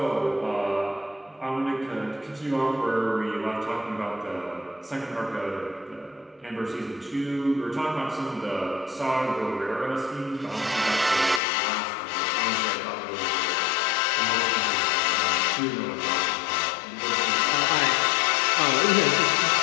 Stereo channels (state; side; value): drops out; right; at 11.4 s